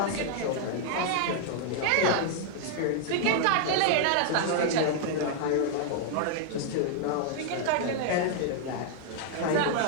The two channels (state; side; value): different; both; correlation 0.00